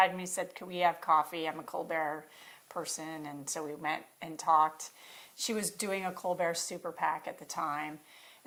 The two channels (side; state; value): both; identical; correlation 1.00